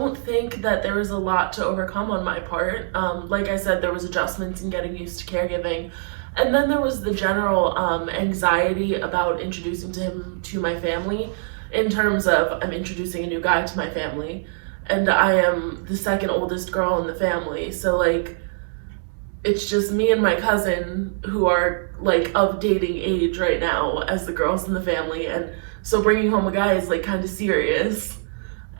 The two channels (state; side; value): silent; left; digital silence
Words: think that there was a lot to overcome on my part. Like I said, there was adjustments in getting used to caregiving. And then there was the general anxiety about introducing him to my family, in terms of I'm introducing a new guy to my family, and I am the second oldest girl in the family. So like, it's just me and my cousin who are like of dating age right now as the girls in the family. And so bringing home a guy is like kind of serious.